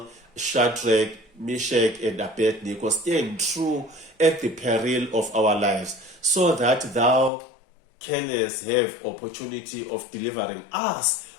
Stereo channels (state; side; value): drops out; right; at 7.3 s